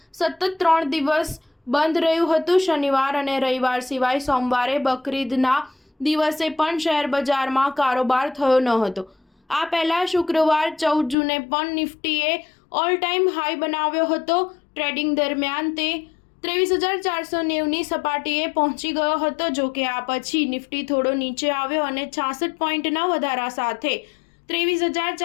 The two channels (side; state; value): right; drops out; at 11.2 s